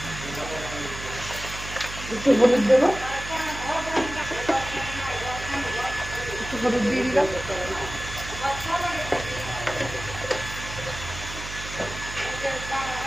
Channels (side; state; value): right; noise; hum, 10 dB below the sound